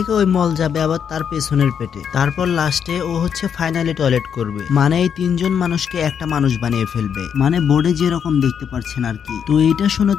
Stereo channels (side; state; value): right; quieter; 7.7 dB